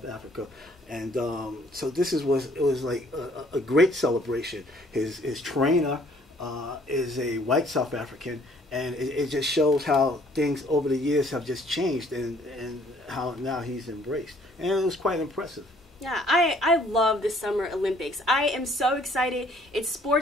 Africa. And so this was like a great celebration. His trainer is a white South African, and it just shows how things over the years have just changed and how now he's embraced. And it was quite impressive. Yeah, I love the Summer Olympics. I am so excited. It's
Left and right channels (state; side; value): normal; both; correlation 0.60